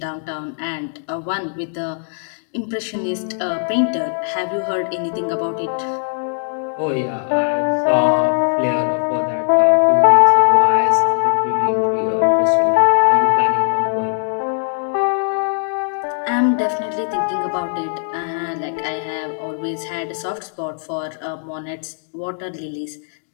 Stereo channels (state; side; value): silent; right; digital silence